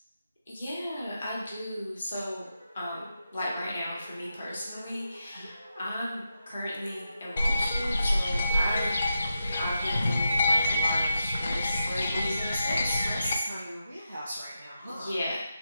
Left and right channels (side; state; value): both; inverted; correlation -0.88